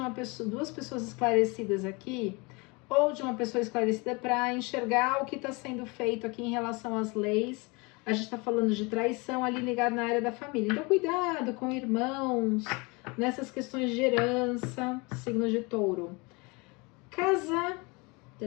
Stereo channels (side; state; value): right; quieter; 27.6 dB